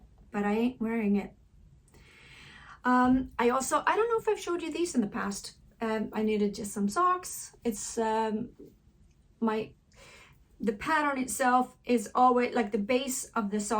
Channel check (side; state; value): both; identical; correlation 1.00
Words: but I ain't wearing it. I don't know if I've showed you these in the past. I knitted just some socks. It's the pattern itself is always like the base of the